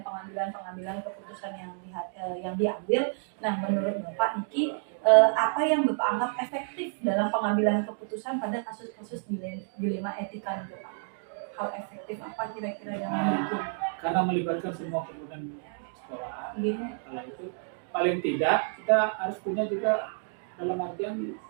pengambilan keputusan yang diambil. Nah, menurut Bapak Niki, apa yang Bapak anggap efektif dalam pengambilan keputusan pada kasus-kasus dilema etika itu Pak? Hal efektif apa kira-kira yang mendukung? Karena melibatkan semua komponen sekolah, kalau itu paling tidak kita harus punya juga dalam artian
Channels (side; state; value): left; silent; 58 dB below the other